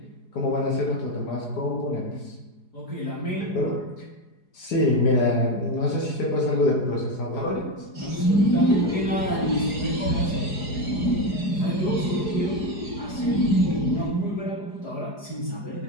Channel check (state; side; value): late; right; 4.8 ms